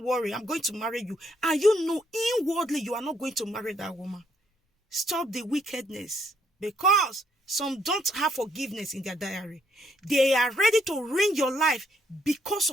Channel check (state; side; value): normal; both; correlation 0.71